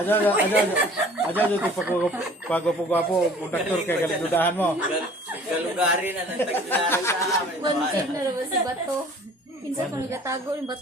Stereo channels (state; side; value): normal; both; correlation 0.50